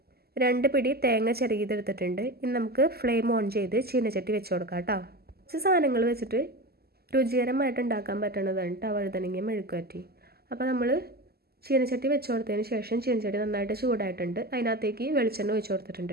2 പിടി തേങ്ങ ചിരകിയതെടുത്തിട്ടുണ്ട്. ഇനി നമുക്ക് ഫ്ലെയിം ഓൺ ചെയ്ത് ചീനച്ചട്ടി വെച്ച് കൊടുക്കാം കേട്ടോ. കുറച്ച് സാധനങ്ങൾ വെച്ചിട്ട് രുചികരമായിട്ട് ഉണ്ടാക്കാൻ പറ്റുന്നതാണ് കേട്ടോ വഴുതനങ്ങ മെഴുക്കുവരട്ടി. അപ്പോൾ നമ്മൾ ചീനച്ചട്ടി വെച്ച് കൊടുത്തതിന് ശേഷം ചീനച്ചട്ടി നന്നായിട്ട് ചൂടായിട്ടുണ്ട്. അതിനകത്തേക്ക് വെളിച്ചെണ്ണ ഒഴിച്ച് കൊടുത്തിട്ടുണ്ട്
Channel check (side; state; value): left; late; 0.46 ms